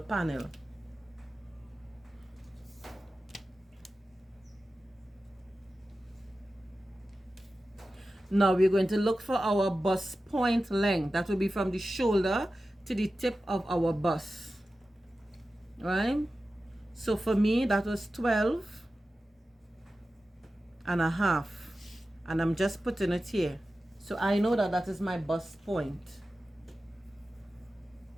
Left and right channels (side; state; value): both; normal; correlation 0.94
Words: panel. Now we're going to look for our bust point length. That will be from the shoulder to the tip of our bust. Right? So for me, that was 12.5. And I'm just putting it here. So I know that that is my bust point.